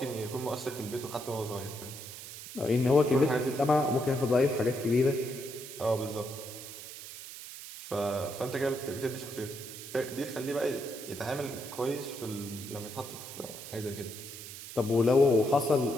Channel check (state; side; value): noise; right; hiss, 12 dB below the sound